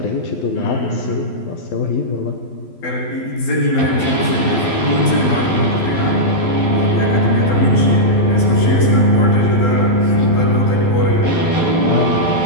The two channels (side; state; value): right; late; 12 ms